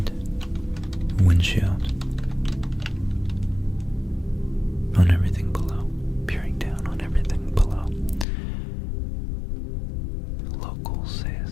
windshield on everything below, peering down on everything below. Locals say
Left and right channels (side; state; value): right; drops out; at 8.2 s